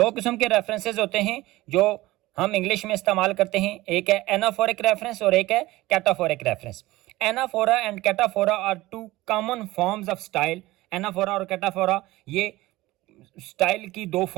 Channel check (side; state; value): left; quieter; 18.5 dB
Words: किस्म के रेफरेंसेस होते हैं जो हम इंग्लिश में इस्तेमाल करते हैं, एक है एनाफोरिक रेफरेंस और एक है cataphoric reference. Anaphora and cataphora are two common forms of style. Anaphora और कैटाफोरा ये स्टाइल की दो